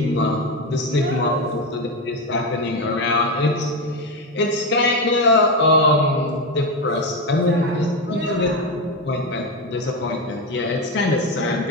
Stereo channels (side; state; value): both; normal; correlation 0.13